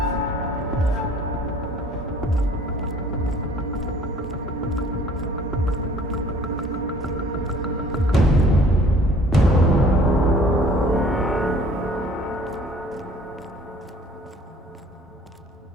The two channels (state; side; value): normal; both; correlation 0.54